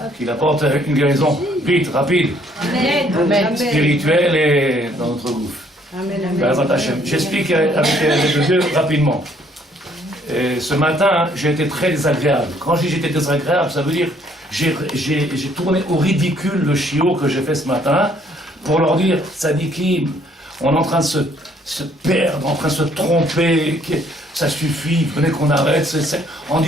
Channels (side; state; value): both; normal; correlation 0.64